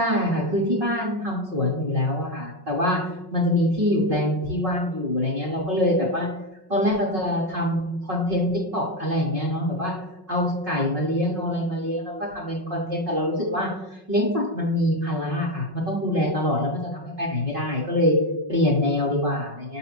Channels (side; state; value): left; late; 5.4 ms